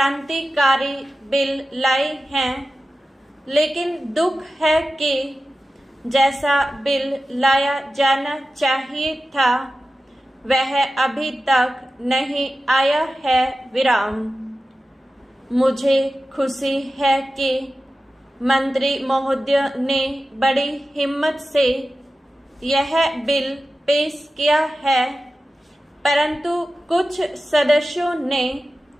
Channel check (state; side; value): normal; both; correlation 0.94